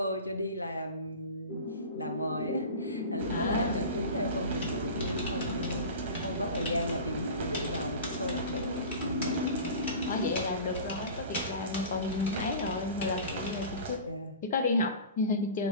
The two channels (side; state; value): both; inverted; correlation -0.35